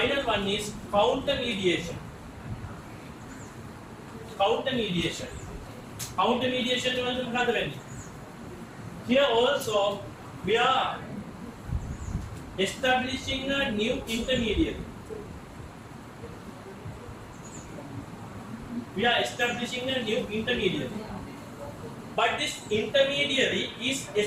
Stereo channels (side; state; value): both; identical; correlation 1.00